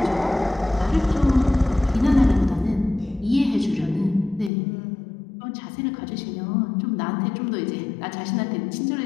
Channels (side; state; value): right; drops out; at 4.5 s